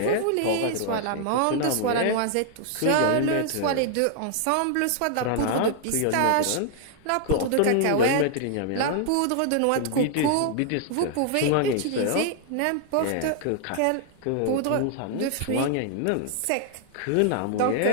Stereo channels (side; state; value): both; different; correlation 0.00